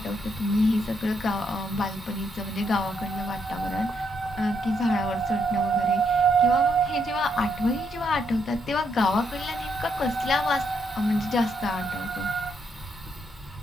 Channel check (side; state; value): both; normal; correlation 0.76